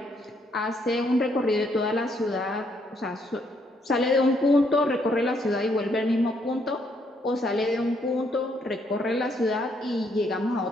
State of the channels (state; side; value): normal; both; correlation 0.72